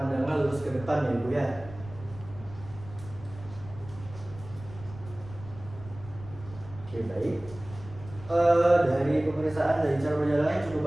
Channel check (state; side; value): noise; left; rumble, 16 dB below the sound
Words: lurus ke depan ya Ibu ya. Oke baik. Dari pemeriksaan dari cara berjalan cukup